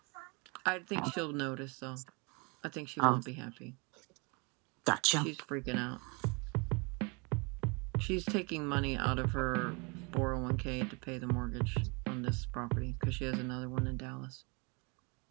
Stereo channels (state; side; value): quieter; left; 30.9 dB